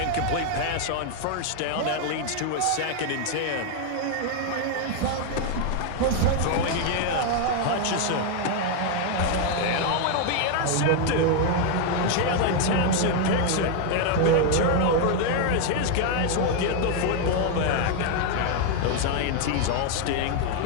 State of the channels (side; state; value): both; different; correlation 0.01